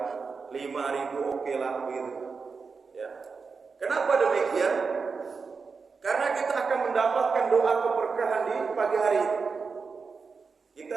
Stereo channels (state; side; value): quieter; left; 5.0 dB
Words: 5.000 oke lah gitu ya. Kenapa demikian? Karena kita akan mendapatkan doa keberkahan di pagi hari.